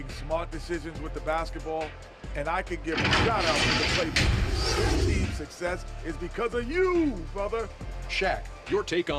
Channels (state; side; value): identical; both; correlation 1.00